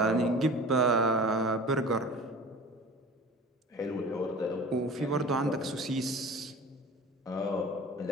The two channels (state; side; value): normal; both; correlation 0.39